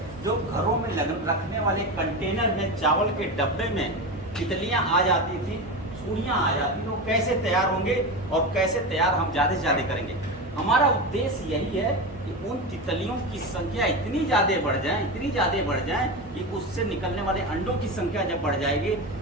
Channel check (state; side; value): normal; both; correlation 0.21